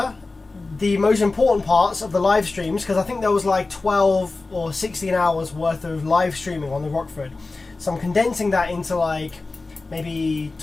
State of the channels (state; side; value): quieter; right; 3.5 dB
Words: the most important parts of the live streams, because I think there was like 12 or 16 hours worth of live streaming on the Rockford. So I'm condensing that into like maybe